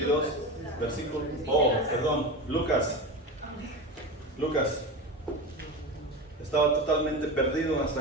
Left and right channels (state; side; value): normal; both; correlation 0.24